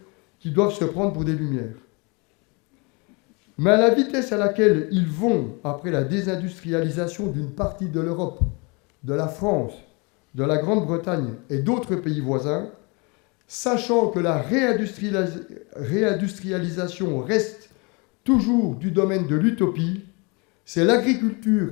qui doivent se prendre pour des lumières. Mais à la vitesse à laquelle ils vont après la désindustrialisation d'une partie de l'Europe, de la France, de la Grande-Bretagne et d'autres pays voisins, sachant que la réindustrialisation reste toujours du domaine de l'utopie, c'est l'agriculture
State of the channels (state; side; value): quieter; right; 29.9 dB